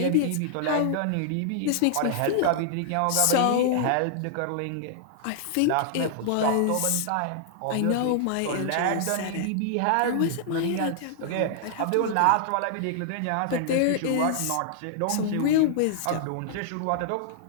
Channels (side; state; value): both; different; correlation -0.01